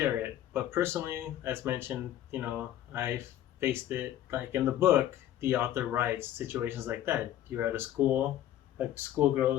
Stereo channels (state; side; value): quieter; right; 12.1 dB